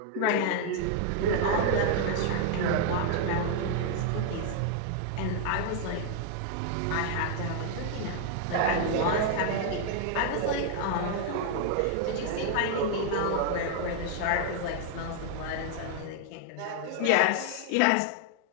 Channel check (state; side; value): different; both; correlation 0.00